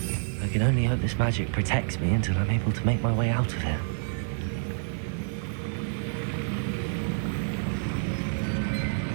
I can only hope this magic protects me until I'm able to make my way out of here.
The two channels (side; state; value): left; silent; digital silence